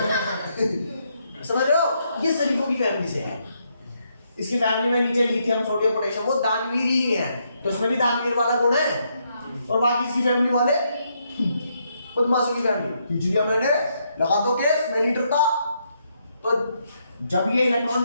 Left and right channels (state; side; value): inverted; both; correlation -0.77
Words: समझ रहे हो? ये शरीफों की फैमिली से है। इसकी फैमिली में नीचे लिथियम, सोडियम, पोटेशियम, वो दानवीर ही है, तो इसमें भी दानवीर वाला गुण है। और बाकी इसकी फैमिली वाले बदमाशों की फैमिली। खींच लिया मैंने, लगा दो केस, मैं नहीं डरता। तो जब ये